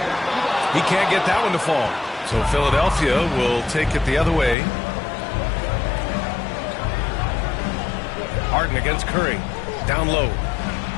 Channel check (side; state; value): right; drops out; at 4.5 s